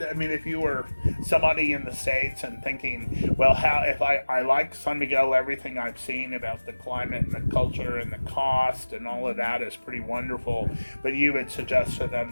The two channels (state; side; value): inverted; both; correlation -1.00